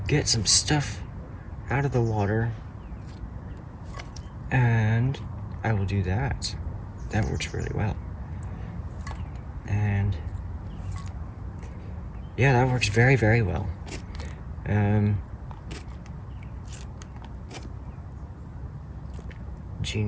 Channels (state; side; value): identical; both; correlation 1.00